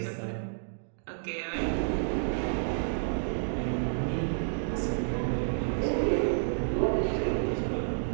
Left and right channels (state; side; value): silent; left; digital silence